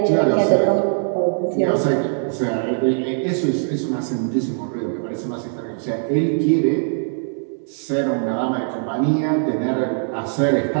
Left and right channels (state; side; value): silent; left; digital silence